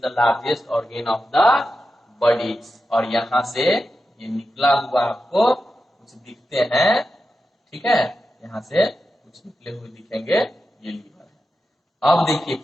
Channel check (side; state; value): both; normal; correlation 0.90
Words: largest organ of the body. और यहाँ से ये निकला हुआ आपको कुछ दिखते हैं, ठीक है, यहाँ से कुछ निकले हुए दिखेंगे, ये लीवर है। अब देखिए